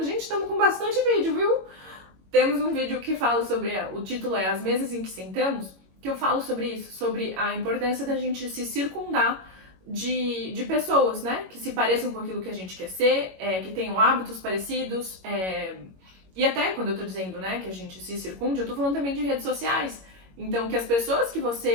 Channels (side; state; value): left; late; 21 ms